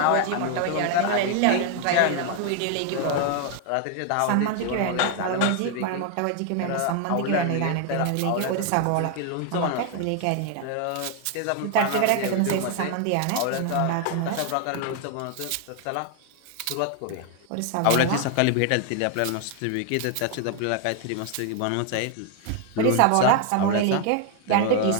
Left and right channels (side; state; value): both; different; correlation 0.00